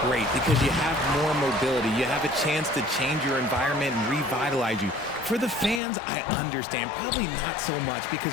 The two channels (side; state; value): right; drops out; at 5.8 s